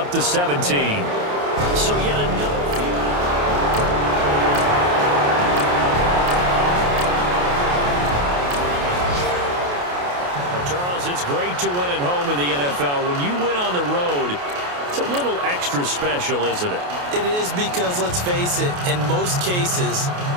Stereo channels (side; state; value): left; late; 28 ms